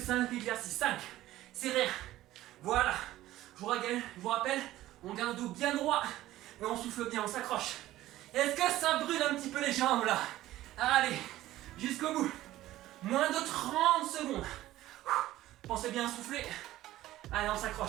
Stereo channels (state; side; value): quieter; left; 15.2 dB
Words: exercices. 5. C'est rien. Voilà. Je vous rappelle, on garde le dos bien droit et on souffle bien, on s'accroche. Est-ce que ça brûle un petit peu les jambes là? Allez, jusqu'au bout. Moins de 30 secondes. Pensez bien à souffler. Allez, on